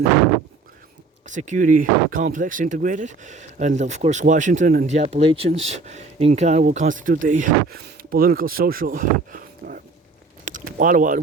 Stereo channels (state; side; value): quieter; left; 3.9 dB